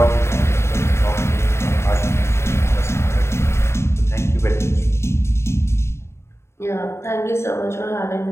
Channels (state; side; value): late; right; 0.13 ms